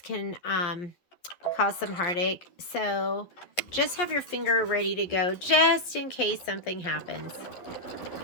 can cause some heartache. So just have your finger ready to go just in case something happens.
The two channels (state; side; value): late; right; 11 ms